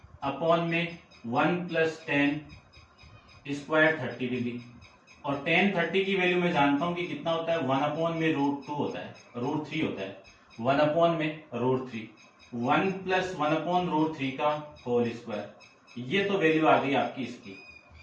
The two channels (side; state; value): both; identical; correlation 1.00